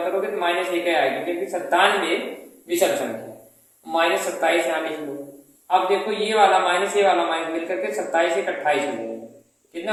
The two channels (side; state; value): both; identical; correlation 1.00